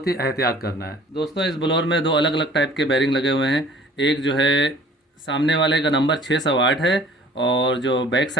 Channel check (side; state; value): both; normal; correlation 0.51